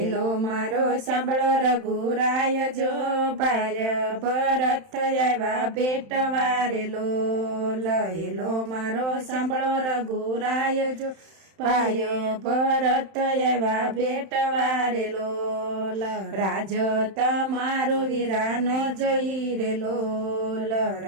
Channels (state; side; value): late; left; 31 ms